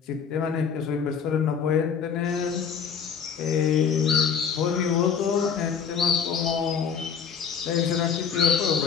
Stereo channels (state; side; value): quieter; right; 6.9 dB